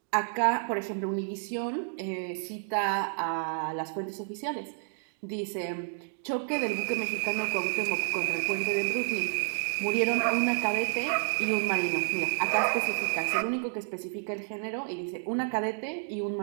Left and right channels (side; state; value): left; silent; digital silence